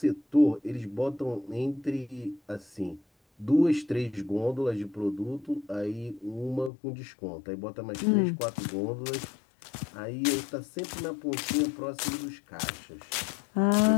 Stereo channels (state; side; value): drops out; right; at 6.7 s